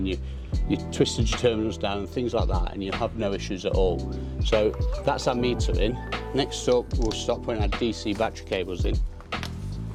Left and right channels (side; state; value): both; identical; correlation 1.00